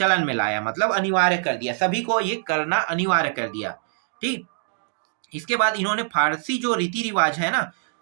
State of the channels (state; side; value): silent; left; digital silence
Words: में लाया, मतलब अनिवार्य कर दिया, सभी को ये करना अनिवार्य कर दिया। ठीक, इसके बाद इन्होंने फारसी जो रीति रिवाज है ना,